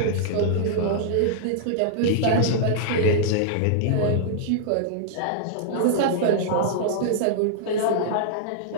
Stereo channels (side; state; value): both; different; correlation -0.01